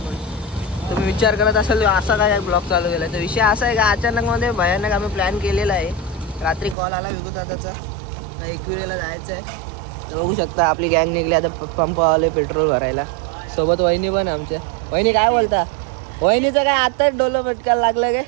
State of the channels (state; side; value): drops out; left; at 6.8 s